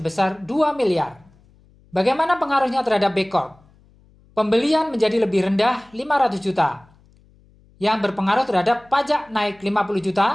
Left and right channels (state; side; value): noise; left; hum, 30 dB below the sound